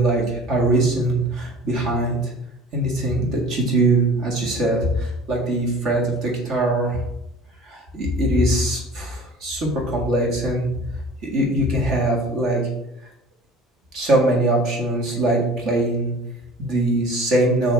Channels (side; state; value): both; normal; correlation 0.44